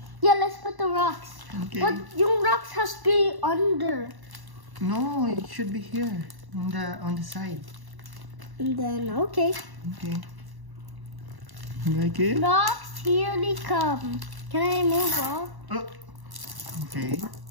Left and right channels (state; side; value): late; left; 1.1 ms